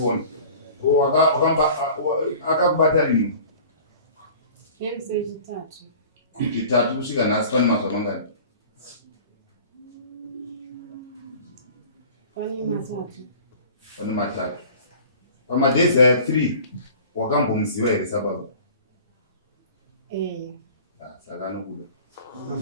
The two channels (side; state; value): both; inverted; correlation -0.44